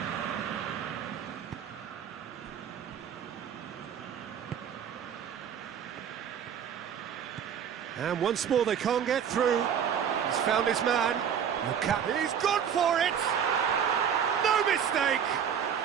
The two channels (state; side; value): quieter; left; 8.2 dB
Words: And once more they can't get through. He's found his man. He's gone for it! No mistake!